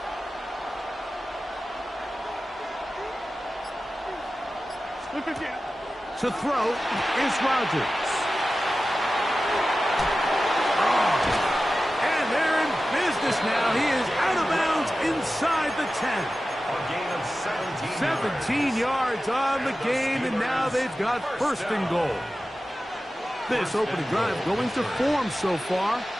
To throw is Rodgers. And they're in business now. He is out of bounds inside the 10. A gain of 17 yards on the game, and now they've got 1st and goal. This opening drive going to form so far.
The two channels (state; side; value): normal; both; correlation 0.94